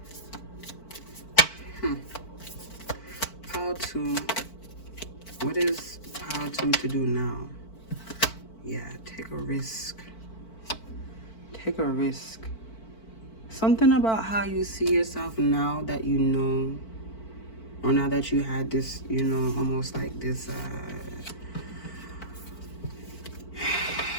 How to, what is how to do now? Yeah, take a risk. Take a risk. Something about how you see yourself now that you know, or now that you had this, you know, almost like this,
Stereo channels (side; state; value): right; late; 4.5 ms